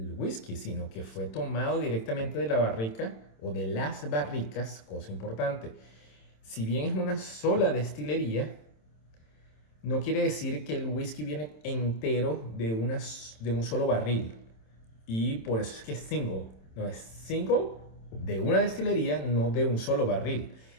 whisky, sino que fue tomado directamente de la barrica o de las barricas, cosa importante. Si bien es una sola destilería, no quiere decir que el whisky viene entero de un solo barril. Y por eso es que es single. No es single de una destilería, no de un solo barril.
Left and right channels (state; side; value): late; right; 27 ms